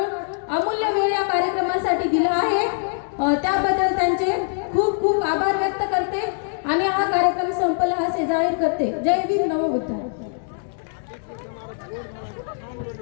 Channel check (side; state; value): right; silent; 64 dB below the other